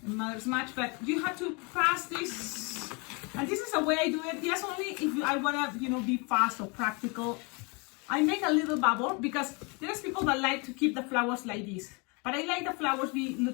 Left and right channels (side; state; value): right; quieter; 30.8 dB